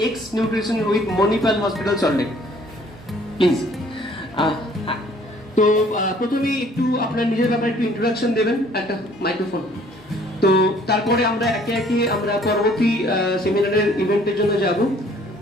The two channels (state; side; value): normal; both; correlation 0.58